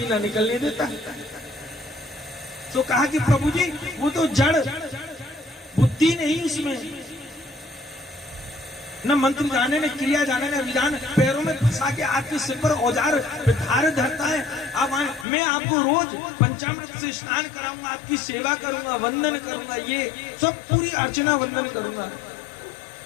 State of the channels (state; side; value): drops out; right; at 15.2 s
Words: ना निकलने देता। तो कहा कि प्रभु जी वो तो जड़ बुद्धि नहीं, उसमें न मंत्र जाने न क्रिया जाने न विधान, पैरों में फंसा के आपके सिर पर औजार धार धरता है। अब मैं आपको रोज पंचामृत से स्नान कराऊंगा, आपकी सेवा करूंगा, वंदन करूंगा, ये सब पूरी अर्चना वंदन करूंगा।